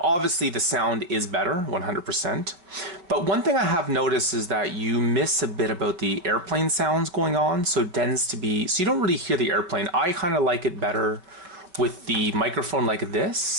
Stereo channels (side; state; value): left; late; 5.4 ms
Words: obviously the sound is better, 100%. But one thing I have noticed is that you miss a bit about the airplane sounds going on, so it tends to be, so you don't really hear the airplane. I kind of like it better with the microphone like